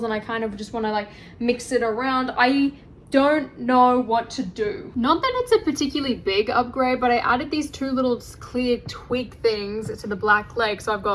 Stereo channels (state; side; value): identical; both; correlation 1.00